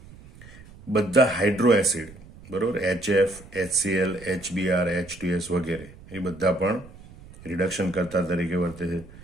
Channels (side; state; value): right; noise; rumble, 20 dB below the sound